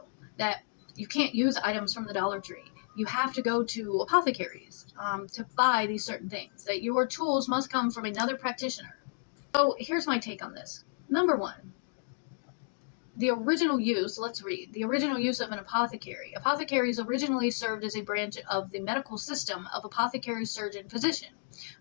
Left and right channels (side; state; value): right; silent; digital silence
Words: that you can't use items from the Dollar Tree. You have to go to apothecaries to buy these certain things, that your tools must come from another practitioner. So here's my take on this. Number one, the original use, let's read, the original use of an apothecary. Apothecaries originally served as a branch of the medical system of apothecary, surgeon, physician,